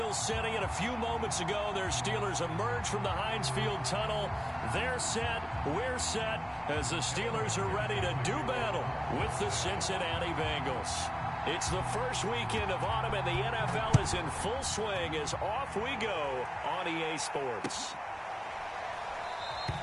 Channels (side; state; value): both; identical; correlation 1.00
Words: City, and a few moments ago, their Steelers emerged from the Heinz Field tunnel. They're set, we're set, as the Steelers are ready to do battle with the Cincinnati Bengals. It's the first weekend of autumn, and the NFL is in full swing as off we go on EA Sports.